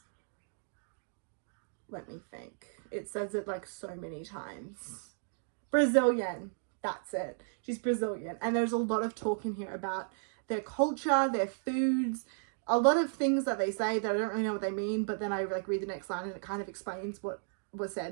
let me think, it says it like so many times, Brazilian. That's it. She's Brazilian. And there's a lot of talk in here about their culture, their foods, a lot of things that they say that I don't really know what they mean, but then I like read the next line and it kind of explains what was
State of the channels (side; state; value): left; silent; digital silence